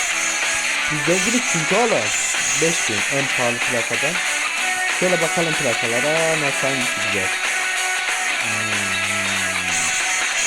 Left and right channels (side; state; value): both; identical; correlation 1.00